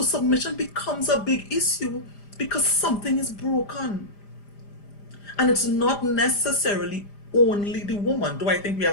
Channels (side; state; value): right; late; 5.0 ms